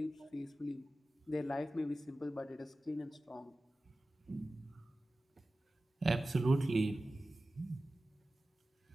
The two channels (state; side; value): normal; both; correlation 0.95